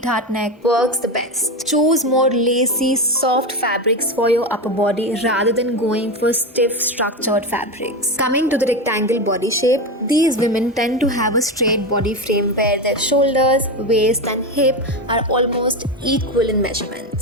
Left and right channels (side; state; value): both; normal; correlation 0.17